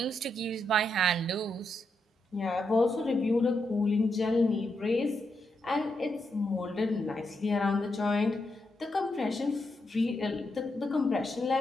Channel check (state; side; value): normal; both; correlation 0.83